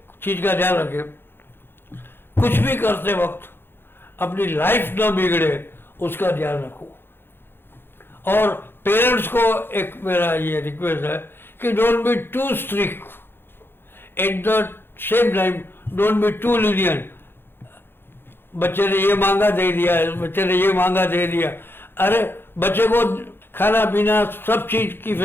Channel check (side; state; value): right; late; 0.10 ms